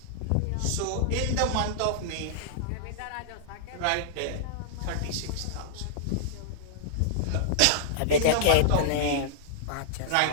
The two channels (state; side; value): different; both; correlation -0.02